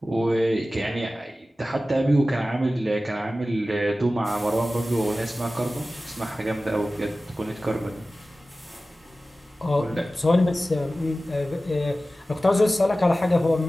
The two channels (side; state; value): both; normal; correlation 0.96